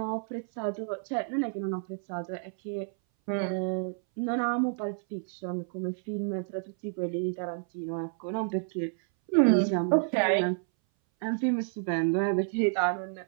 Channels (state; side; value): silent; left; 58 dB below the other